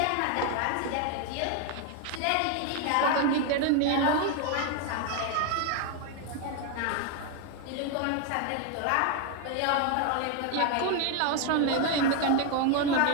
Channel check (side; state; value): both; different; correlation 0.01